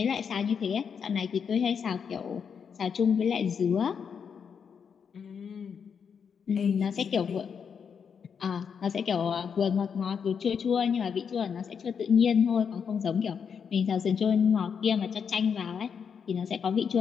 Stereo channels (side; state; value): right; quieter; 6.8 dB